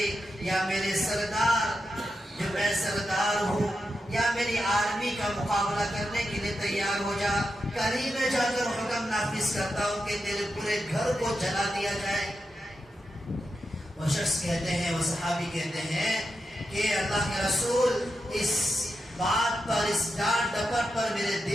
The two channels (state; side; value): normal; both; correlation 0.88